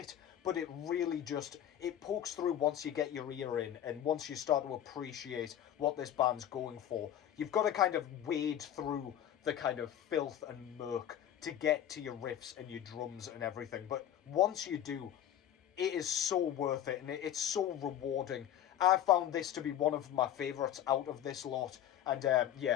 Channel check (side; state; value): right; quieter; 10.8 dB